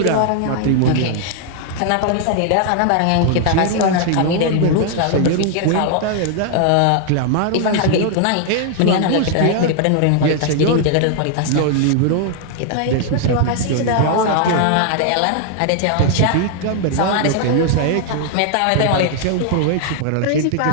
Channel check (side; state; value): both; different; correlation 0.00